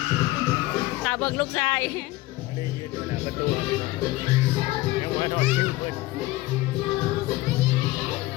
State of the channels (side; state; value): right; quieter; 18.5 dB